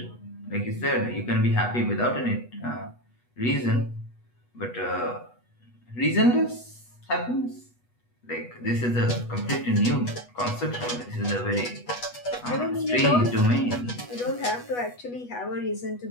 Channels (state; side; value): late; right; 8.2 ms